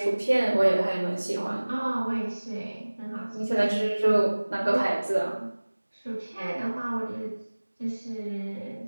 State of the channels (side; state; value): both; inverted; correlation -1.00